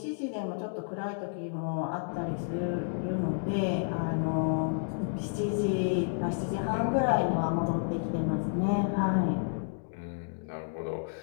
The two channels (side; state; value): right; silent; digital silence